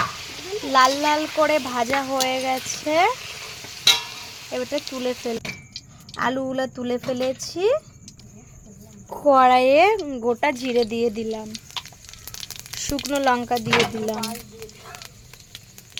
লাল লাল করে ভাজা হয়ে গেছে, এবারে তুলে আলুগুলো তুলে ফেলেছি। কড়াইয়ে গোটা জিরে দিয়ে দিলাম, শুকনো লঙ্কা দিয়ে দিলাম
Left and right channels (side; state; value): both; identical; correlation 1.00